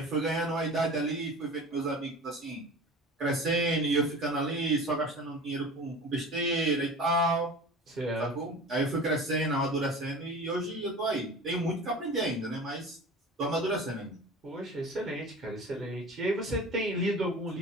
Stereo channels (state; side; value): normal; both; correlation 0.37